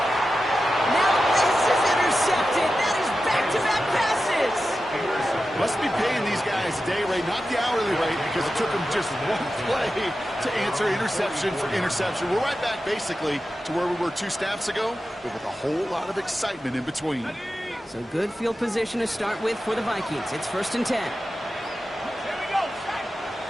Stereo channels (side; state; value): both; normal; correlation 0.92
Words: Now this is intercepted. That is back-to-back passes. Must be paying these guys day rate, not the hourly rate, because it took them just one play to answer interception for interception. We're right back, basically, to where we were 2 snaps ago, but with a whole lot of excitement in between. So good field position to start with for the Vikings. It's 1st and 10.